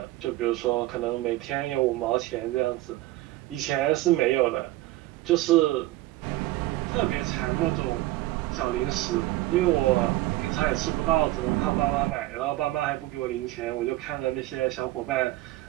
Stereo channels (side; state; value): left; quieter; 17.2 dB